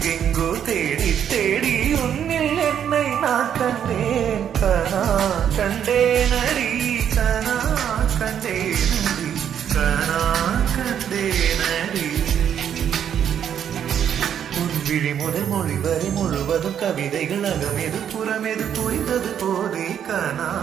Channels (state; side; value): quieter; left; 9.0 dB